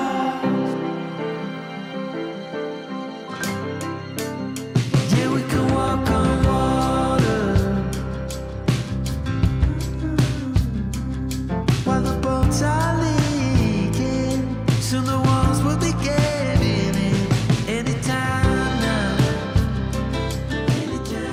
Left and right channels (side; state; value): both; identical; correlation 1.00